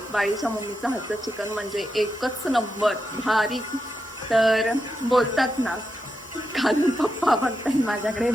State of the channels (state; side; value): normal; both; correlation 0.86